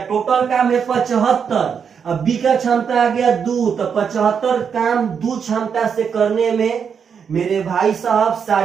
टोटल काम है 75, अब बी का क्षमता आ गया 2, तो 75 काम 2 क्षमता से करने में मेरे भाई साहब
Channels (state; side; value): quieter; left; 6.9 dB